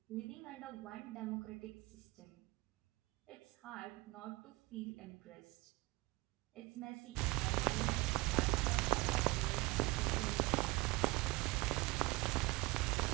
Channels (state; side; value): quieter; left; 22.6 dB